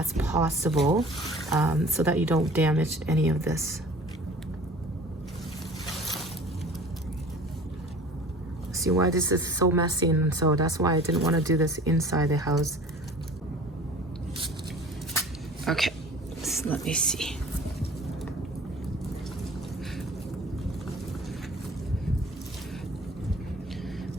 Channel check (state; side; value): normal; both; correlation 0.45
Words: possible so that you don't damage any of this. See why this is so messy, and so that's why I didn't want to do this inside the house. Okay, so let me see.